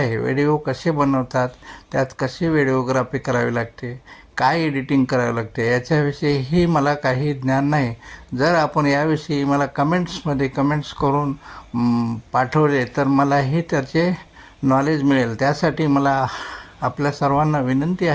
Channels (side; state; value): both; identical; correlation 1.00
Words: व्हिडिओ कसे बनवतात, त्यात कशी व्हिडिओग्राफी करावी लागते, काय एडिटिंग करावं लागते याच्याविषयीही मला काही ज्ञान नाही. जर आपण याविषयी मला कमेंट्स करून पाठवले तर मलाही त्याचे नॉलेज मिळेल. त्यासाठी मला आपल्या सर्वांना विनंती